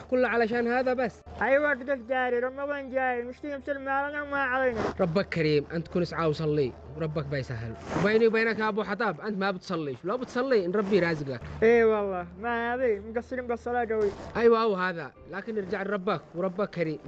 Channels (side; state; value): both; identical; correlation 1.00